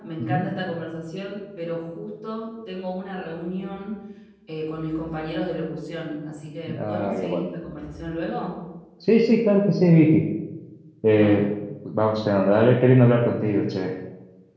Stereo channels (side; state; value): both; identical; correlation 1.00